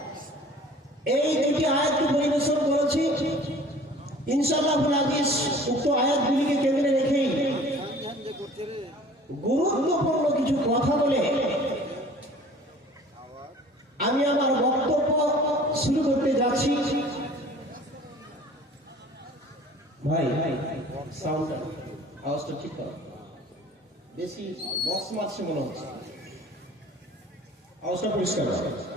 এই দুটি আয়াতকে পরিবেশন করেছি। ইনশাআল্লাহুল আজিজ উক্ত আয়াতগুলিকে কেন্দ্রে রেখেই গুরুত্বপূর্ণ কিছু কথা বলে আমি আমার বক্তব্য শুরু করতে যাচ্ছি। ভাই সাউন্ড আওয়াজটা ঠিক করো, বেশি বক্স মারছে মনে হচ্ছে, আওয়াজটা পরিষ্কার হয়।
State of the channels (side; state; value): both; normal; correlation 0.48